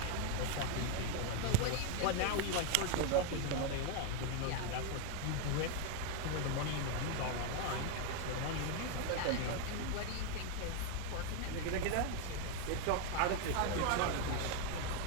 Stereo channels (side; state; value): both; different; correlation 0.01